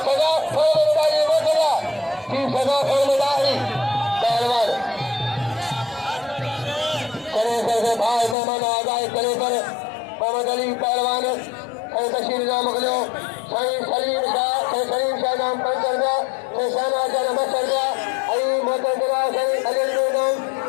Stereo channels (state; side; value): drops out; right; at 8.3 s